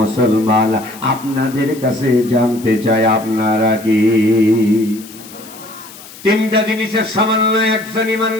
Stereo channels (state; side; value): noise; left; hiss, 18 dB below the sound